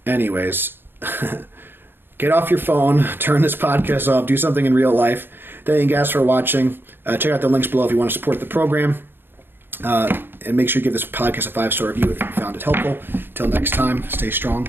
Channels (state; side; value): late; left; 0.10 ms